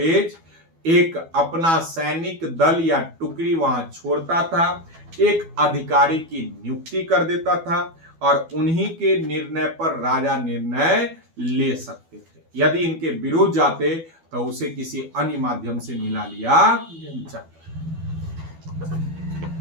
एक अपना सैनिक दल या टुकड़ी वहां छोड़ता था, एक अधिकारी की नियुक्ति कर देता था और उन्हीं के निर्णय पर राजा निर्णय ले सकते थे। यदि इनके विरुद्ध जाते तो उसे किसी अन्य माध्यम से मिला लिया जाता।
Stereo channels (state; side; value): late; left; 12 ms